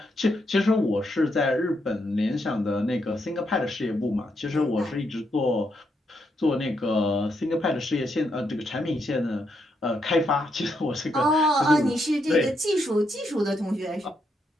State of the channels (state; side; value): normal; both; correlation 0.79